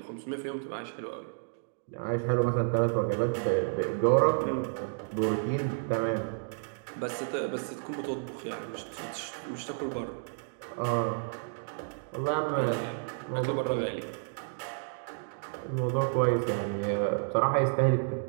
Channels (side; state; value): left; silent; digital silence